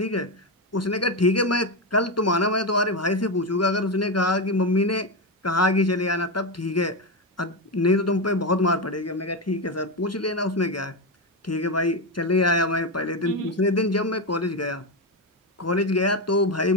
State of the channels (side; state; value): both; normal; correlation 0.12